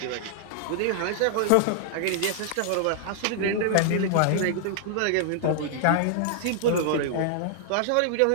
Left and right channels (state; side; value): different; both; correlation -0.01